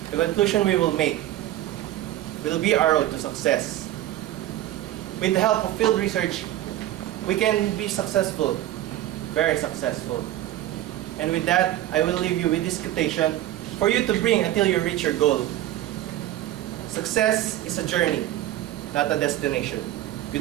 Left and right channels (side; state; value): left; quieter; 13.9 dB